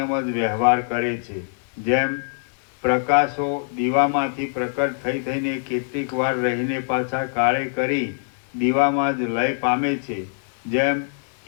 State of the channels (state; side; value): silent; right; 62 dB below the other